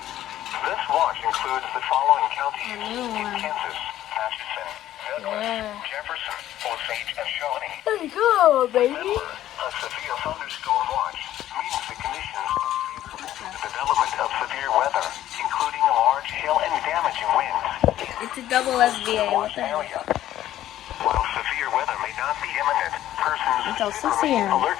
watch includes the following counties in Kansas: Atchison, Douglas, Jefferson, Osage, and Shawnee. Let's go, baby. Remember, a severe thunderstorm watch means the conditions favorable to the development of severe weather, including large hail and damaging winds. It's a double SBA. What the heck? While severe weather may not be imminent, persons Until 6 should remain a.m. alert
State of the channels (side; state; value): right; quieter; 12.9 dB